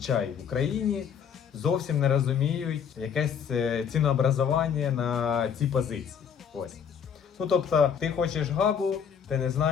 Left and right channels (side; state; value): right; quieter; 7.5 dB